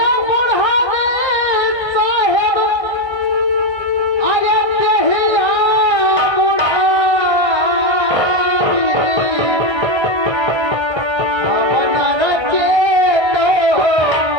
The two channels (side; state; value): left; late; 1.6 ms